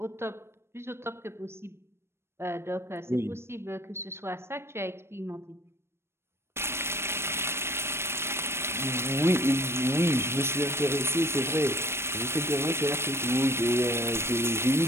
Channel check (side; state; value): left; late; 0.12 ms